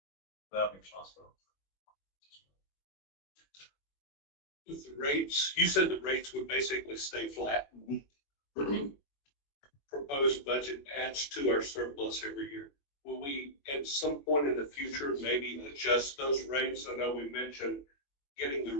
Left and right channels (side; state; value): right; late; 21 ms